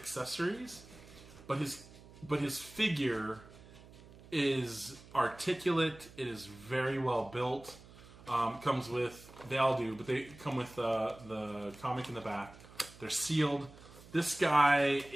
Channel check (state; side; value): noise; right; hum, 20 dB below the sound